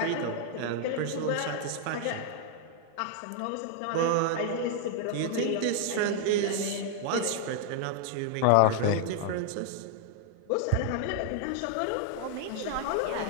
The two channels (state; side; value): different; both; correlation 0.00